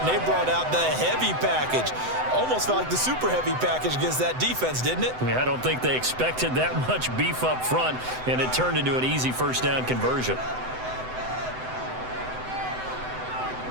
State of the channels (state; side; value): late; left; 7.9 ms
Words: they brought out the heavy package. Almost felt like the super heavy package against that defense, didn't it? Yeah, I don't think they expected that much beef up front, and it turned into an easy first down conversion.